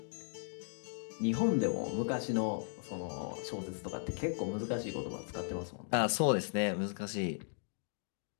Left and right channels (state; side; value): silent; right; digital silence